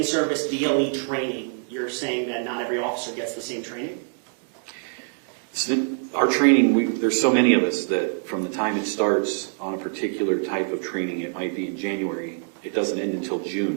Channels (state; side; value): silent; left; digital silence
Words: DLE training, you're saying that not every officer gets the same training? Our training, there's so many of us that from the time it starts on a particular type of training, it might be in January, it doesn't end until